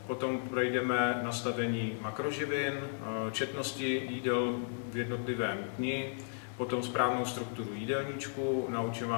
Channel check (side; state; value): right; silent; digital silence